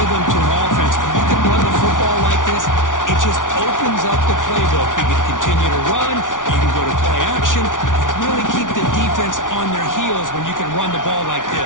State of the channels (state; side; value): late; right; 0.88 ms